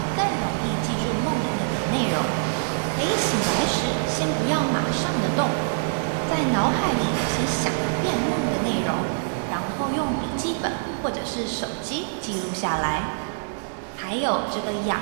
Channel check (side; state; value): left; silent; 62 dB below the other